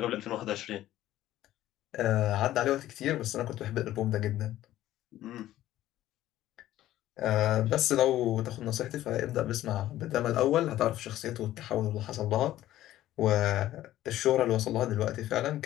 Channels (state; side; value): quieter; right; 14.0 dB